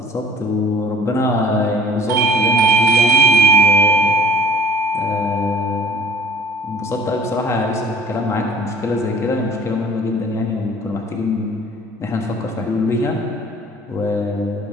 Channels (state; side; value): normal; both; correlation 0.49